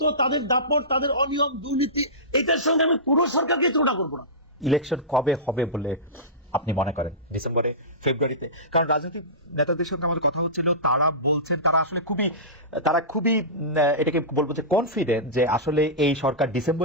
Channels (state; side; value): normal; both; correlation -0.19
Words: তাদের দাপট, তাদের অনিয়ম, দুর্নীতি, এটার সঙ্গে আমি পুরো সরকারকে তুলনা করবো না। ইলেকশন কবে হবে বলে আপনি মনে করেন? ডিসেম্বরে, ফেব্রুয়ারিতে? কারণ রাজনৈতিক নেতাদের সঙ্গে আমাদের কথা হচ্ছিল, তারা বলছেন তারা আসলে খুবই এটাকে বলবো যে কনফিডেন্ট যে আসলে এই সরকার